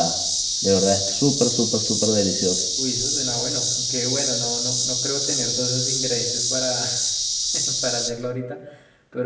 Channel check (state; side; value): identical; both; correlation 1.00